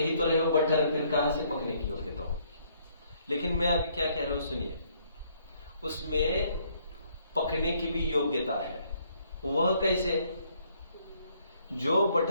तो रहे हो बटर, फिर कहां से पकने की योग्यता होगी। लेकिन मैं अभी क्या कह रहा हूं सुनिए, उसमें पकने की भी योग्यता है। वह कैसे? जो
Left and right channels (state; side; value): inverted; both; correlation -0.67